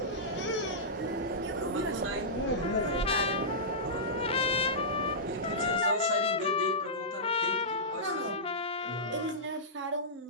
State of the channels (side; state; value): both; normal; correlation -0.15